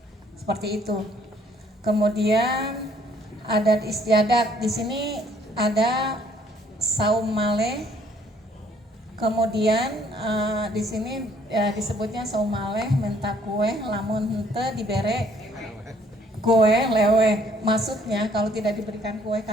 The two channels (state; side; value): normal; both; correlation 0.62